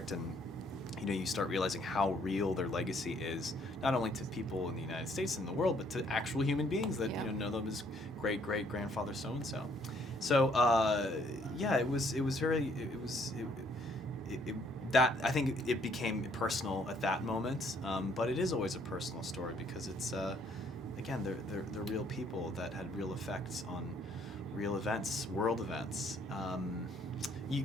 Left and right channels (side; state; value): both; normal; correlation 0.65